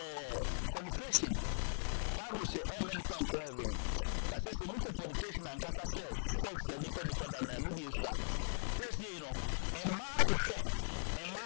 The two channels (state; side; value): silent; right; 51 dB below the other